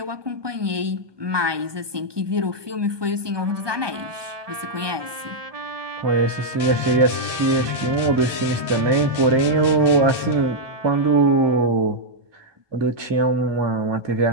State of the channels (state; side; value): late; left; 1.2 ms